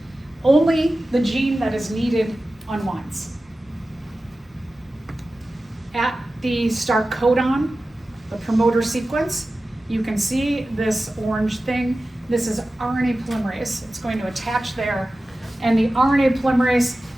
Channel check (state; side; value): normal; both; correlation 0.95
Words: Only the gene that is needed unwinds. At the start codon, the promoter sequence, you can see this orange thing. This is RNA polymerase. It's going to attach there. And the RNA polymerase,